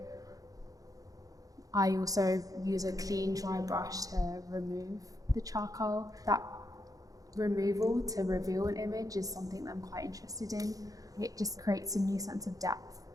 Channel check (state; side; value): late; left; 0.17 ms